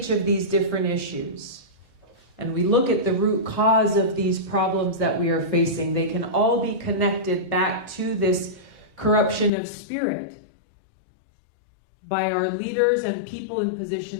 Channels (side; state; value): right; drops out; at 9.5 s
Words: of these different issues, and we look at the root cause of these problems that we are facing, they can all be connected back to this corruption of spirit by our leaders and people in